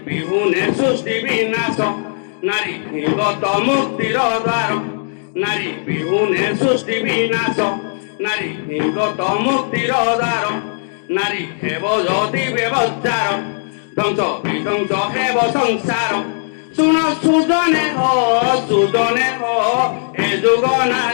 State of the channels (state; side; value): silent; right; digital silence